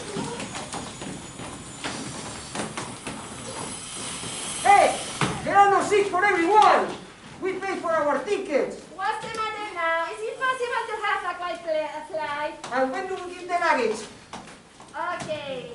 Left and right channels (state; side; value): identical; both; correlation 1.00